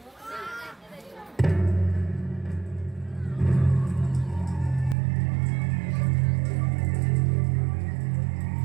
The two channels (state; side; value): drops out; left; at 5.0 s